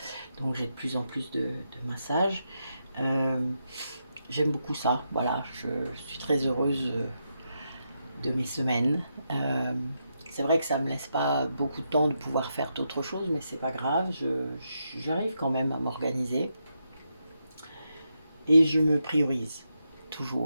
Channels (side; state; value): both; inverted; correlation -0.84